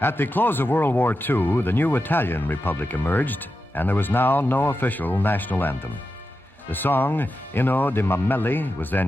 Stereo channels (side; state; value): both; normal; correlation 0.90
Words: At the close of World War II, the new Italian Republic emerged, and there was now no official national anthem. The song Inno di Mameli was